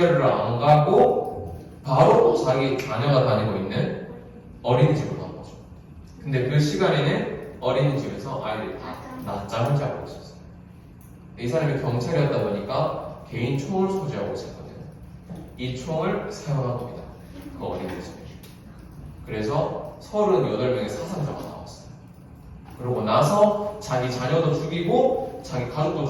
안 가고 바로 자기 자녀가 다니고 있는 어린이집으로 간 거죠. 근데 그 시간에는 어린이집에서 아이들이 다 낮잠을 자고 있었어요. 이 사람이 경찰이었다 보니까 개인 총을 소지하고 있었거든요. 이 총을 사용한 겁니다. 그 어린이집에. 그래서 38명의 사상자가 나왔어요. 그러고 나서 자기 자녀도 죽이고 자기 가족도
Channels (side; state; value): both; identical; correlation 1.00